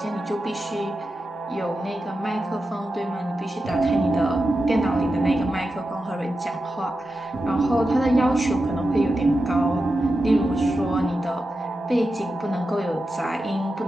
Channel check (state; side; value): normal; both; correlation 0.90